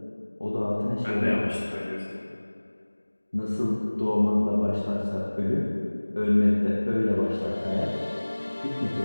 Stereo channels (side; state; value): both; inverted; correlation -1.00